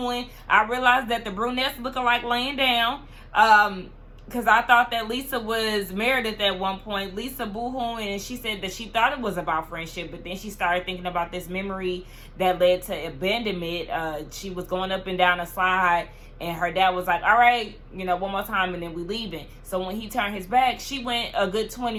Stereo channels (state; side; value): identical; both; correlation 1.00